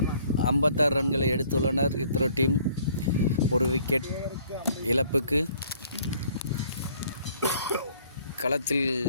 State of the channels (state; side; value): inverted; both; correlation -0.60